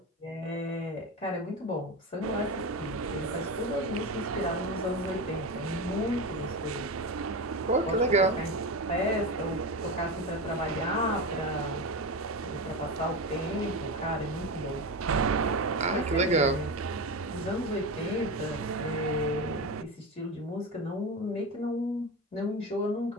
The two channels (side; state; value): both; normal; correlation 0.20